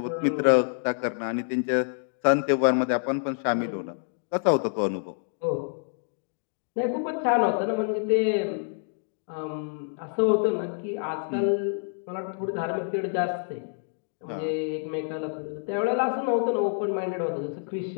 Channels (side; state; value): right; silent; 59 dB below the other